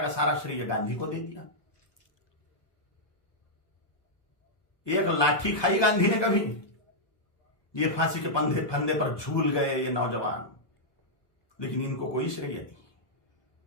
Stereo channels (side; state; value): right; late; 1.2 ms